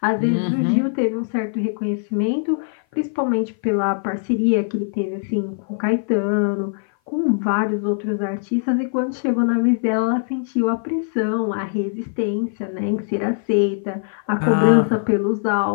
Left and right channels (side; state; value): right; silent; 56 dB below the other